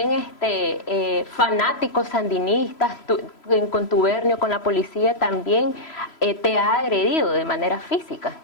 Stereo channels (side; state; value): right; late; 3.0 ms